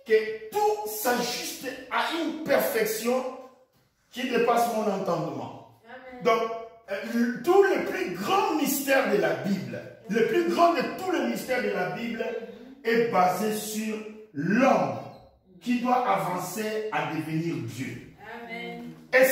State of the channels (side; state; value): both; identical; correlation 1.00